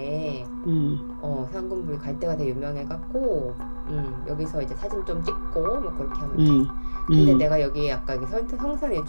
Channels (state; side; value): inverted; both; correlation -1.00